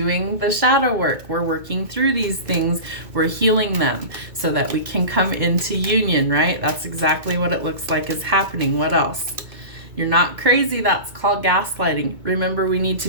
the shadow work. We're working through these things. We're healing them so that we can come into union, right? That's exactly what it looks like is happening. What else? You're not crazy. That's called gaslighting. Remember, we need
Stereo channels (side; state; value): left; late; 2.2 ms